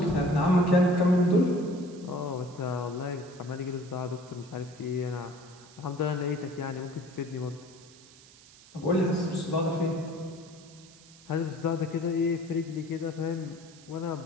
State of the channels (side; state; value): right; noise; hiss, 23 dB below the sound